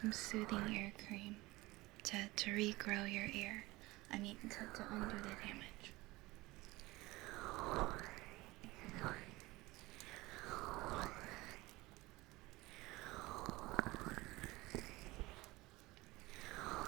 soothing ear cream to regrow your ear. I mean, to undo the damage.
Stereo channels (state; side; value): quieter; left; 20.6 dB